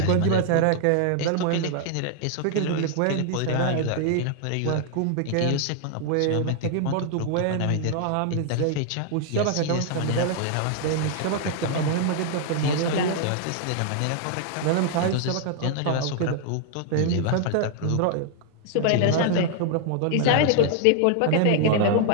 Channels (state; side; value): different; both; correlation 0.00